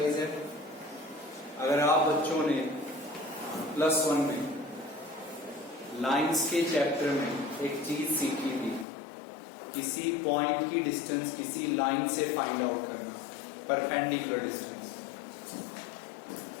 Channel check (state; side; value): drops out; right; at 8.8 s